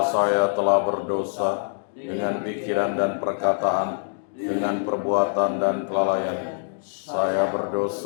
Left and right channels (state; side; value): silent; right; digital silence